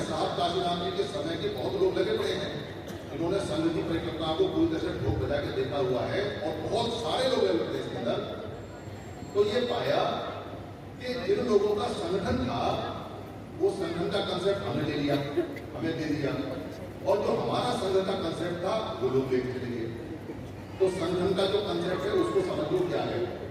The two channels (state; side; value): identical; both; correlation 1.00